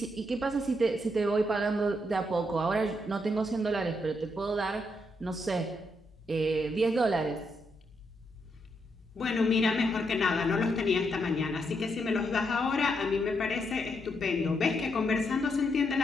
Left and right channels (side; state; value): both; normal; correlation 0.79